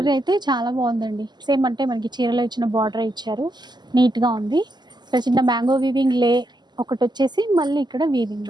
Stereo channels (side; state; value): left; late; 0.21 ms